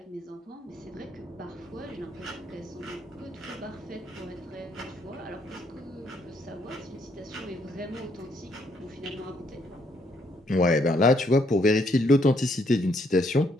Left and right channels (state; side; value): normal; both; correlation 0.71